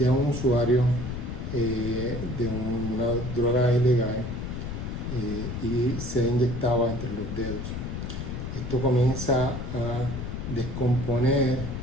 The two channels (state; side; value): noise; left; rumble, 5 dB below the sound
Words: un usuario de una droga ilegal y se inyectaba entre los dedos. Esto comienza a descomponer